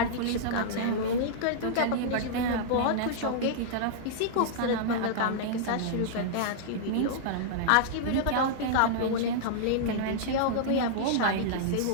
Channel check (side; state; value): both; different; correlation -0.02